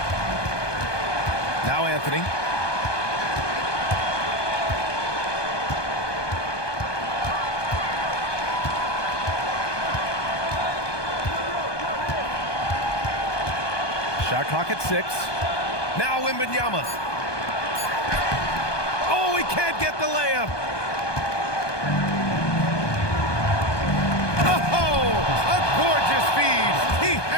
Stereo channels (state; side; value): late; right; 1.2 ms